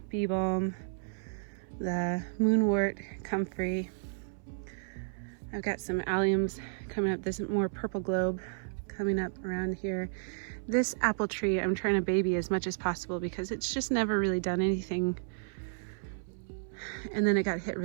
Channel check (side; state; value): left; silent; 56 dB below the other